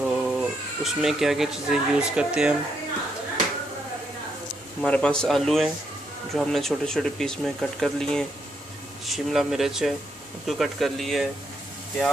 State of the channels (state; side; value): normal; both; correlation 0.77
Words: उसमें क्या क्या चीज़ें यूज़ करते हैं हमारे पास आलू हैं जो हमने छोटे छोटे पीस में कट कर लिए हैं, शिमला मिर्च है उसको कट कर लिए है,